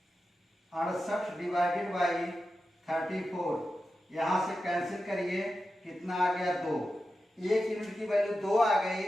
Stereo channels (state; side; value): normal; both; correlation 0.91